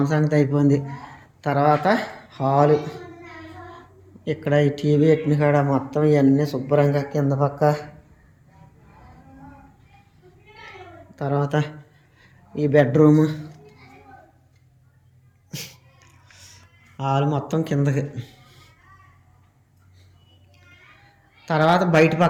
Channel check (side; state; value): both; identical; correlation 1.00